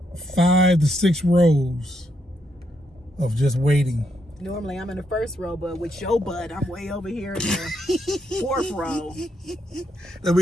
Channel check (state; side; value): normal; both; correlation 0.78